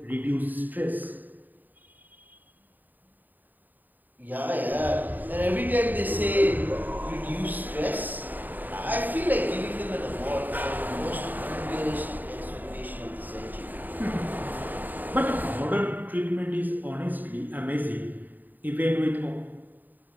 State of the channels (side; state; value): left; late; 0.087 ms